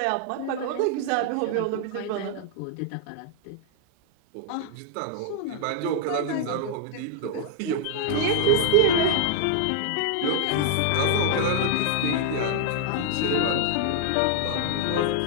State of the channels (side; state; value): both; different; correlation -0.01